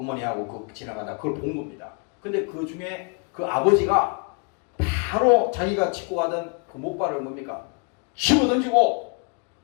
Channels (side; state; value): right; quieter; 36.9 dB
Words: 그 지나가다 그걸 본 겁니다. 근데 그 중에 그 아버지가 바로 자기가 짚고 가던 그 목발을 뭡니까? 집어 던지고